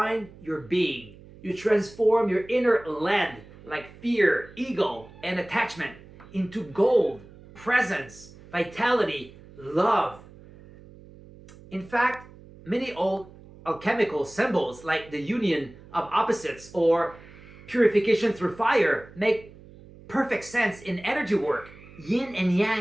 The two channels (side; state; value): right; noise; hum, 21 dB below the sound